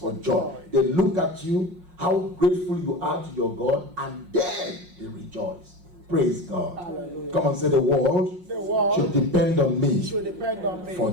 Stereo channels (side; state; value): left; late; 5.5 ms